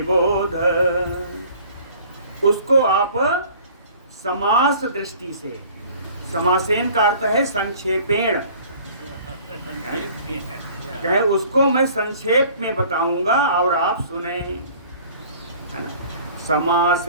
उसको आप समास दृष्टि से, समासेन का अर्थ है संक्षेपेण, कहे उसको मैं संक्षेप में बताऊंगा और आप सुने, है ना।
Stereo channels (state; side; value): inverted; both; correlation -0.50